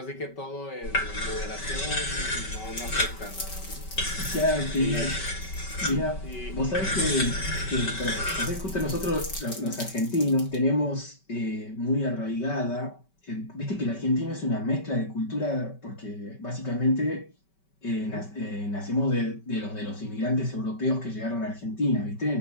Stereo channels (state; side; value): late; right; 5.2 ms